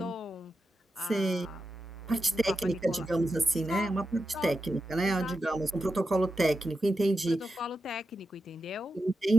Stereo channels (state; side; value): normal; both; correlation 0.89